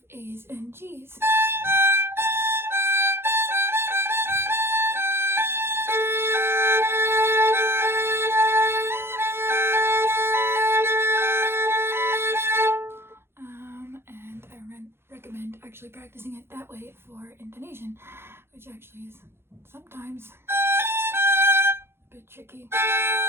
A's and G's. And I recommend actually practicing it that way for intonation, which actually is sometimes a bit tricky.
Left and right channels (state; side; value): late; left; 0.12 ms